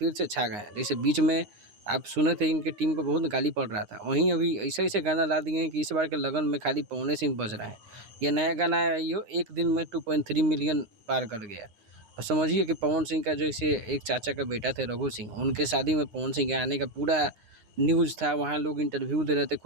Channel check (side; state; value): left; late; 9.6 ms